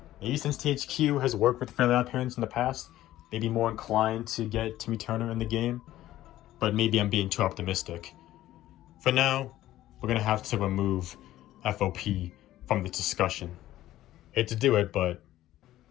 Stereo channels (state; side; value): quieter; right; 14.3 dB